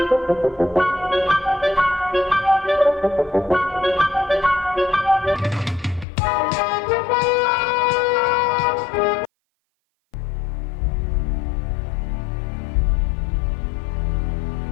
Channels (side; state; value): right; drops out; at 6.1 s